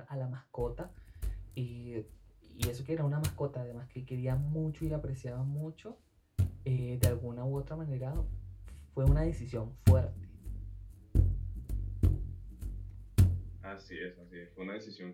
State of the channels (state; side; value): identical; both; correlation 1.00